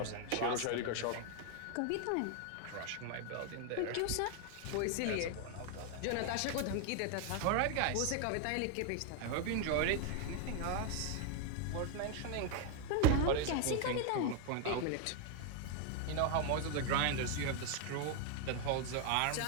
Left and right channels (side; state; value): both; different; correlation 0.01